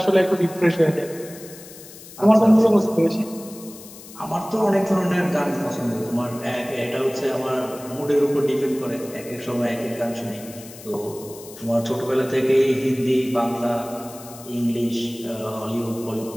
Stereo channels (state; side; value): noise; left; hiss, 17 dB below the sound